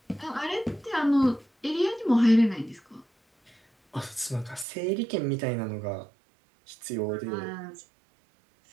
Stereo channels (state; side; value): drops out; left; at 4.7 s